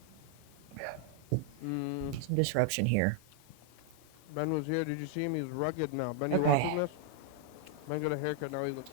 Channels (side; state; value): both; different; correlation 0.00